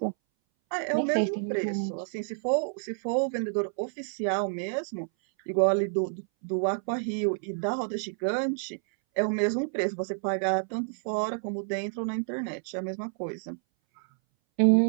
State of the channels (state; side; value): silent; left; 59 dB below the other